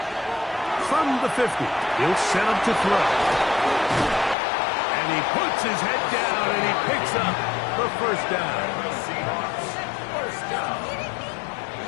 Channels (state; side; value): drops out; right; at 4.4 s